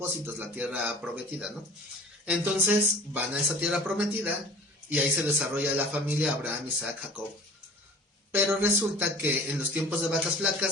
la tierra prometida, ¿no? Entonces van a esa tierra prometida y ahí se desarrolla la familia Abraham, Isaac, Jacob. Pero resulta que en los tiempos de vacas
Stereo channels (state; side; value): normal; both; correlation 0.43